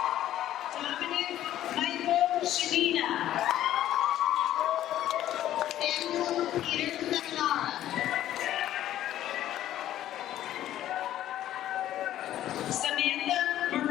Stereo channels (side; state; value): right; quieter; 12.6 dB